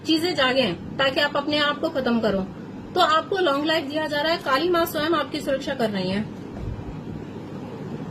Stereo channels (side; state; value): both; identical; correlation 1.00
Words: चीजें जागे, ताकि आप अपने आप को खत्म करो, तो आपको लॉन्ग लाइफ दिया जा रहा है। काली माँ स्वयं आपकी सुरक्षा कर रही है।